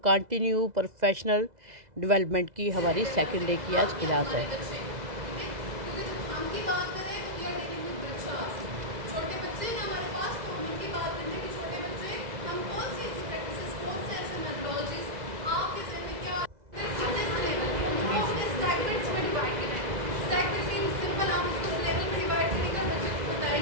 professional development की हमारी सेकंड डे की आज क्लास है।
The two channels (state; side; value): late; left; 2.0 ms